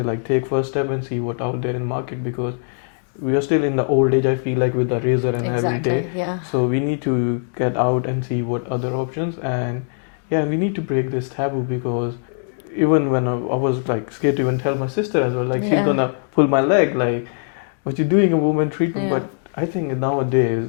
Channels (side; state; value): right; silent; digital silence